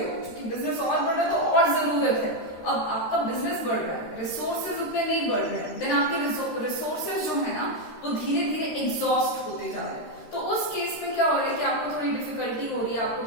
क्योंकि बिजनेस और बढ़ रहा है तो और जरूरत है, अब आपका बिजनेस बढ़ रहा है, रिसोर्सेज उतने नहीं बढ़ रहे हैं, देन आपके रिसोर्सेज जो है ना वो धीरे धीरे एग्जॉस्ट होते जा रहे हैं। तो उस केस में क्या हो रहा है कि आपको थोड़ी डिफिकल्टी हो रही है,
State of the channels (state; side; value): late; right; 13 ms